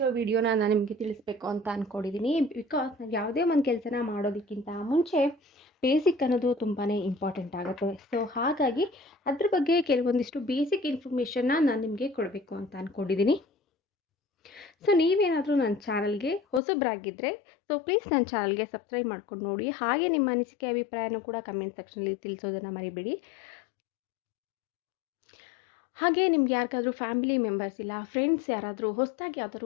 ವಿಡಿಯೋನ ನಾನು ನಿಮಗೆ ತಿಳಿಸ್ಬೇಕು ಅಂತ ಅಂದ್ಕೊಂಡಿದ್ದೀನಿ. ಬಿಕಾಸ್ ನಾವು ಯಾವುದೇ ಒಂದು ಕೆಲಸನ ಮಾಡೋದಕ್ಕಿಂತ ಮುಂಚೆ ಬೇಸಿಕ್ ಅನ್ನೋದು ತುಂಬಾ ಇಂಪಾರ್ಟೆಂಟ್ ಆಗುತ್ತೆ. ಹಾಗಾಗಿ ಅದ್ರ ಬಗ್ಗೆ ಕೆಲವೊಂದಿಷ್ಟು ಬೇಸಿಕ್ ಇನ್ಫಾರ್ಮೇಷನ್ನ ನಾನು ನಿಮಗೆ ಕೊಡಬೇಕು ಅಂತ ಅಂದ್ಕೊಂಡಿದ್ದೀನಿ. ನೀವೇನಾದರೂ ನನ್ನ ಚಾನಲ್ಗೆ ಹೊಸಬರಾಗಿದ್ದರೆ ಪ್ಲೀಸ್ ನನ್ನ ಚಾನಲ್ಗೆ ಸಬ್ಸ್ಕ್ರೈಬ್ ಮಾಡ್ಕೊಂಡು ನೋಡಿ. ಹಾಗೆ ನಿಮ್ಮ ಅನಿಸಿಕೆ ಅಭಿಪ್ರಾಯನೂ ಕೂಡ ಕಮೆಂಟ್ ಸೆಕ್ಷನಲ್ಲಿ ತಿಳಿಸೋದನ್ನು ಮರಿಬೇಡಿ. ಹಾಗೆ ನಿಮ್ಗೆ ಯಾರಿಗಾದ್ರೂ ಫ್ಯಾಮಿಲಿ ಮೆಂಬರ್ಸ್ ಇಲ್ಲ ಫ್ರೆಂಡ್ಸ್ ಯಾರಾದರೂ ಹೊಸದಾಗಿ ಯಾವ್ದಾದ್ರು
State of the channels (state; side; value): drops out; right; at 16.6 s